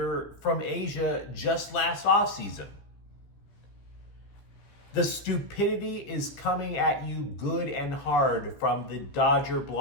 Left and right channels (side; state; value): right; late; 15 ms